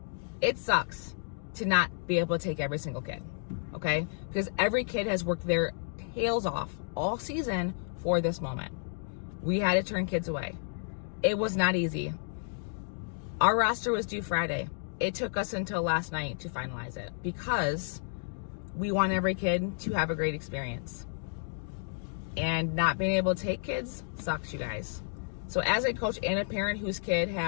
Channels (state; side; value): silent; right; digital silence